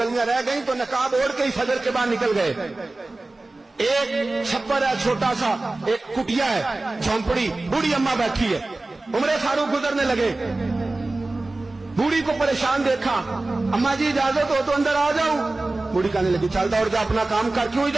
रह गई तो नकाब ओढ़ के ही फजर के बाद निकल गए। एक छप्पर है छोटा सा, एक कुटिया है, झोंपड़ी, बूढ़ी अम्मा बैठी है। उमर फारूक गुजरने लगे, बूढ़ी को परेशान देखा, अम्मा जी इजाजत हो तो अंदर आ जाऊं। बूढ़ी कहने लगी चल दौड़ जा, अपना काम कर, क्यों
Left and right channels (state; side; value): quieter; left; 3.0 dB